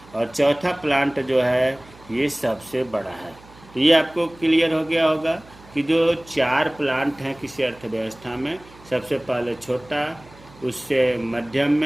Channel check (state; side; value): noise; right; hum, 23 dB below the sound